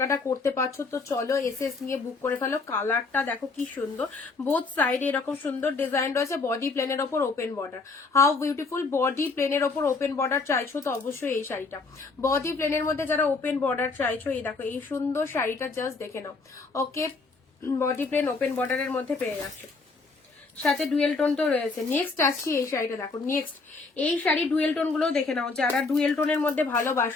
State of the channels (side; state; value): right; quieter; 4.0 dB